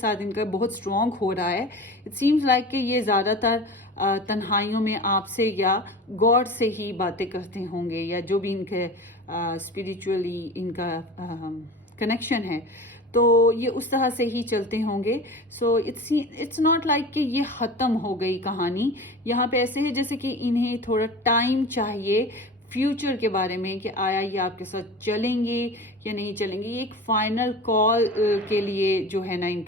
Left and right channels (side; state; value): both; normal; correlation 0.34